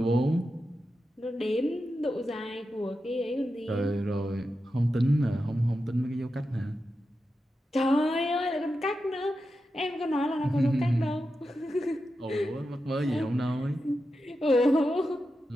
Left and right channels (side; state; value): both; normal; correlation 0.90